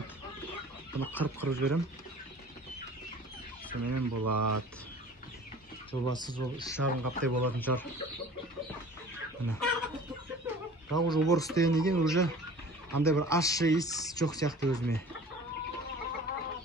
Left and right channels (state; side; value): normal; both; correlation 0.44